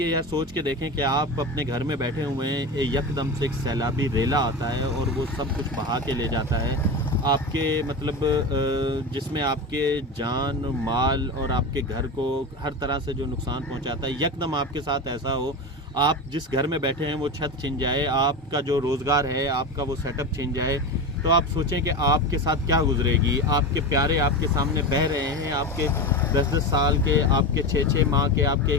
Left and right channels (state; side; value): normal; both; correlation 0.23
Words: یہ سوچ کے دیکھیں کہ آپ اپنے گھر میں بیٹھے ہوئے ہیں، یکدم سے ایک سیلابی ریلا آتا ہے اور وہ سب کچھ بہا کے لے جاتا ہے، آپ کے مطلب جس میں آپ کے جان مال اور آپ کے گھر کو ہر طرح سے جو نقصان پہنچاتا ہے، یکدم آپ کے ساتھ ایسا ہو، آپ جس گھر میں بیٹھے ہیں وہ چھت چھن جائے، آپ کا جو روزگار ہے، آپ کا وہ سیٹ اپ چھن جائے، تو آپ سوچیں کہ آپ کے ساتھ کیا گزرے گی۔ آپ کے پیارے آپ کے سامنے بہہ رہے ہیں، آپ کے 10-10 سال کے، آپ کے 6-6 ماہ کے، آپ کے